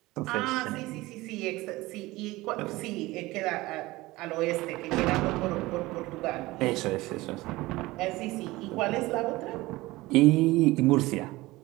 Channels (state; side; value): quieter; left; 19.7 dB